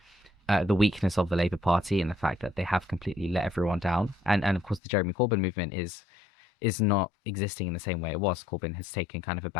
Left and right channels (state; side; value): drops out; right; at 4.8 s